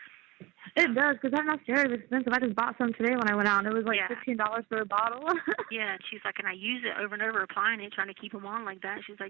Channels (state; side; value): quieter; left; 21.8 dB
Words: It does, because that mascara is expensive. I just bought some today when I went out, and it was like $15 for a bottle. Yeah, and she's like, and I use it over and over, applying it, trying to keep them on like that. She's